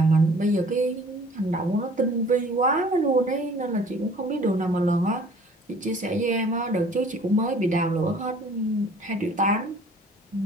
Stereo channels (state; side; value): normal; both; correlation 0.52